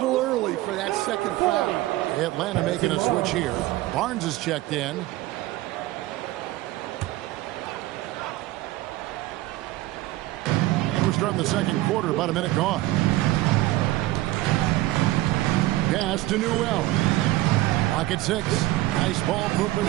early for that 2nd foul. Atlanta making a switch here. Barnes is checked in. And we're starting the second quarter, about a minute gone. Pass to Newell. Pocket 6. Nice ball movement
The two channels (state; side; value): quieter; left; 17.4 dB